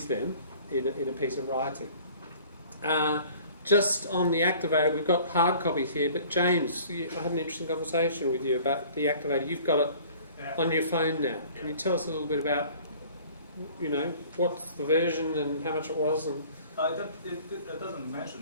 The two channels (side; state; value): both; inverted; correlation -0.50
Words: them in a piece of writing. Just on the activator, we've got hard copies here, but James, I had an interesting conversation with you about the activator. You've got it on your phone now. Can you tell us a little bit about, what's the version and how much it was? And it doesn't mention